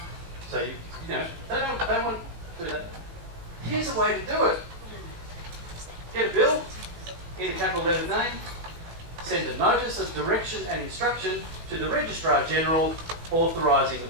So you know, they don't want to do that. Here's a way to do it. Get a bill in a capital letter name, send a notice of direction and instruction to the Registrar General authorising the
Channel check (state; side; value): late; left; 18 ms